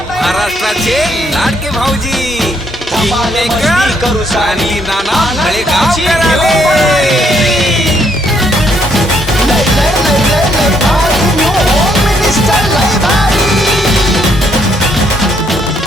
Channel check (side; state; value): both; normal; correlation 0.70